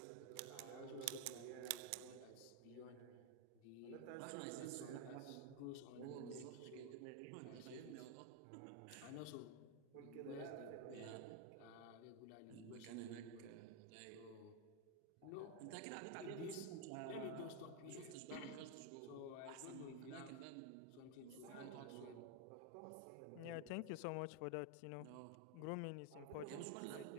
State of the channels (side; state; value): both; different; correlation 0.01